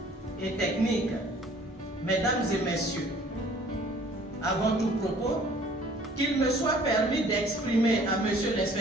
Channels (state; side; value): normal; both; correlation 0.54